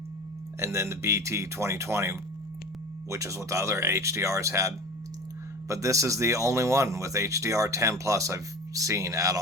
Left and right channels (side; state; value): both; normal; correlation 0.35